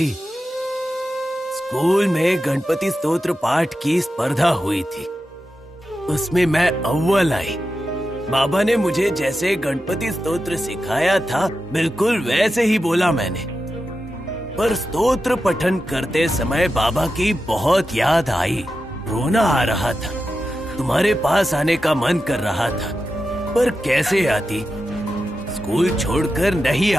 स्कूल में गणपति स्तोत्र पाठ की स्पर्धा हुई थी, उसमें मैं अव्वल आई। बाबा ने मुझे जैसे गणपति स्तोत्र सिखाया था, बिल्कुल वैसे ही बोला मैंने। पर स्तोत्र पठन करते समय बाबा की बहुत याद आई, रोना आ रहा था। तुम्हारे पास आने का मन कर रहा था, पर कैसे आती? स्कूल छोड़कर नहीं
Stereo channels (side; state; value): both; normal; correlation 0.90